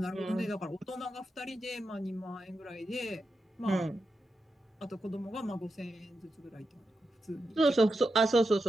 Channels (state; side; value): normal; both; correlation 0.88